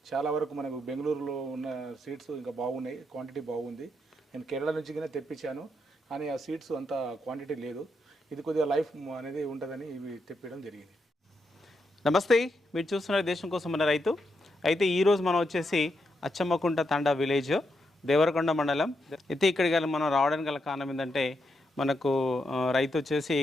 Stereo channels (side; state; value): both; normal; correlation 0.82